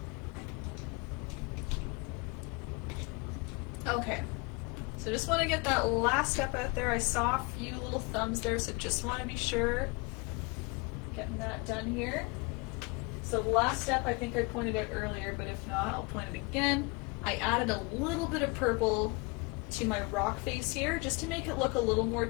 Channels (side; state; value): right; quieter; 28.2 dB